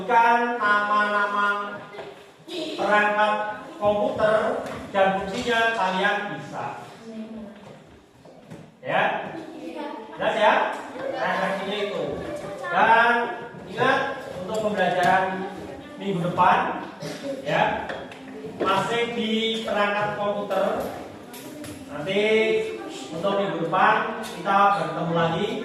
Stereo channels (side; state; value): both; identical; correlation 1.00